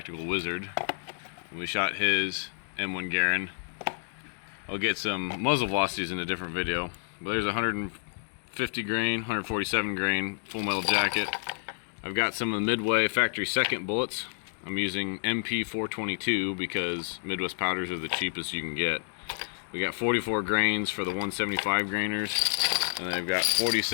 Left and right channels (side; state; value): right; silent; digital silence